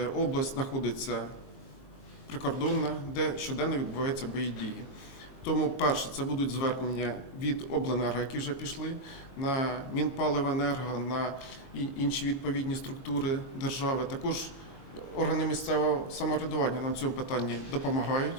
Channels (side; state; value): right; late; 22 ms